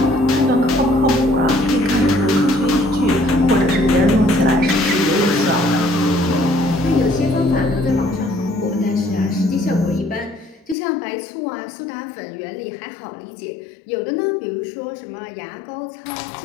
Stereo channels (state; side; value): drops out; right; at 10.8 s